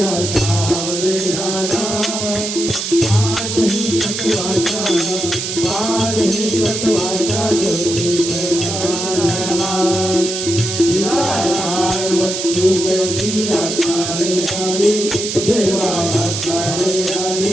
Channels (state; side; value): noise; right; hiss, 4 dB below the sound